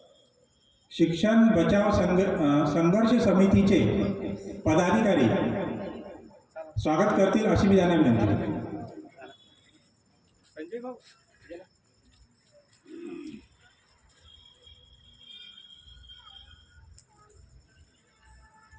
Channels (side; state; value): both; identical; correlation 1.00